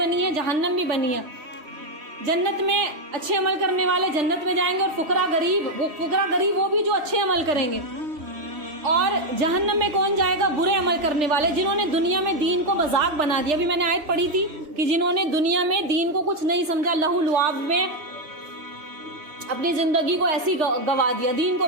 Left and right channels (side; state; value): left; late; 3.4 ms